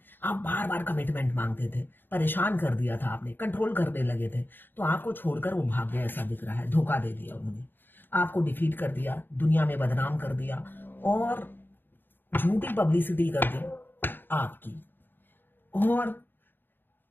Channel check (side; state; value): right; late; 0.096 ms